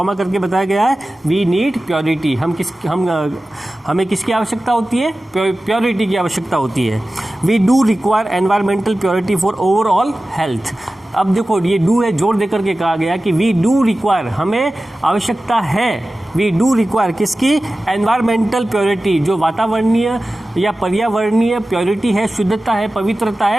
करके बताया गया है? We need purity. हमें किसकी आवश्यकता होती है? प्योरिटी की आवश्यकता होती है। We do require environmental purity for overall health. अब देखो, ये डू है, जोर देकर के कहा गया कि वी डू रिक्वायर, हमें आवश्यकता है। वी डू रिक्वायर किसकी? एनवायरमेंटल प्योरिटी, जो वातावरणीय या पर्यावरणीय प्योरिटी है, शुद्धता है, पवित्रता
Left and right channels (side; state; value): both; normal; correlation 0.95